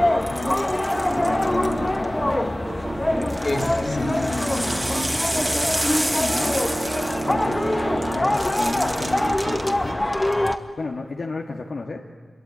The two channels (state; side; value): normal; both; correlation 0.98